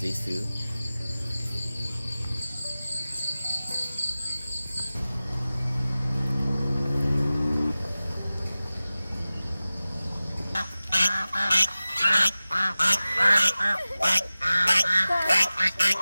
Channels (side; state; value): both; inverted; correlation -0.96